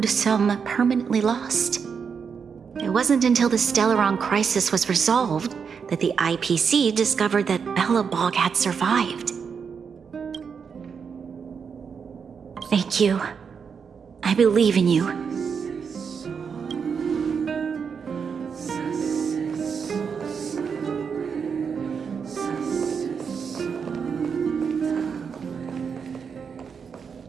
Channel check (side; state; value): left; quieter; 6.3 dB